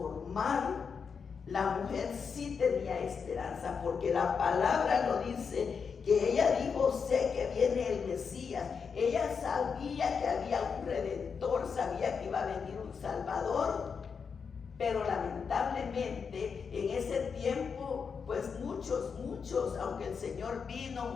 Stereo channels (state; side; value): quieter; right; 6.0 dB